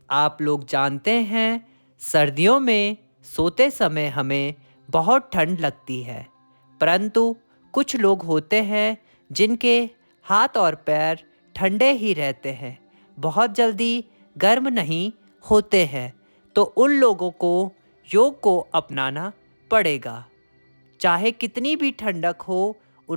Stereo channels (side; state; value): both; inverted; correlation -1.00